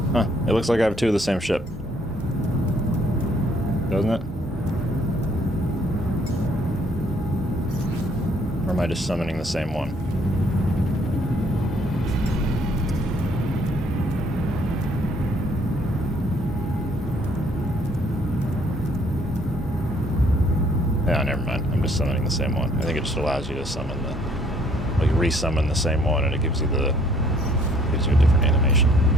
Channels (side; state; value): both; normal; correlation 0.63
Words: Huh, it looks like I have two of the same ship. Doesn't it? Or am I just summoning the same one? Yeah, never mind. I'm just summoning the same one. I think it just allows you to summon the... like, re-summon the same one, and it gives you a different animation.